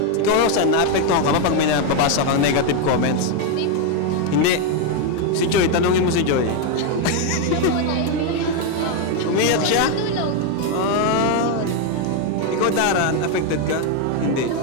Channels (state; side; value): different; both; correlation 0.01